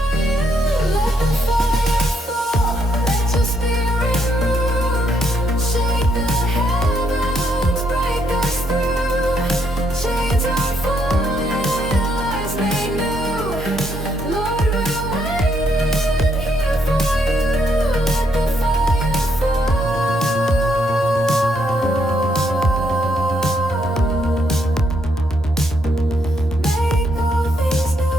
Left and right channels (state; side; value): normal; both; correlation 0.74